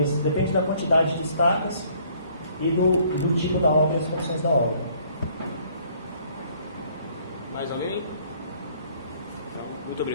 Depende da quantidade de estacas e do tipo da obra e as condições da obra. Mais alguém? Então, muito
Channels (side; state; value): both; inverted; correlation -0.61